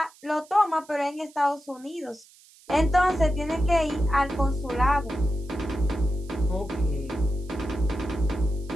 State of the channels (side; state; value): right; noise; hiss, 26 dB below the sound